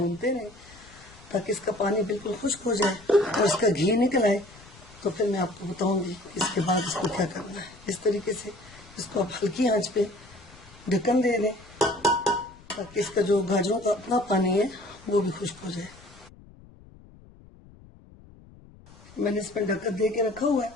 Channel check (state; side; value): noise; left; rumble, 23 dB below the sound